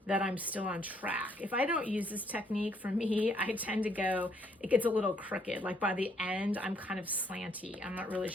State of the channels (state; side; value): normal; both; correlation 0.69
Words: that I'm still on track. If I don't use this technique, for me, I tend to go, it gets a little crooked. Like by the end, I'm kind of slanty. I'm not really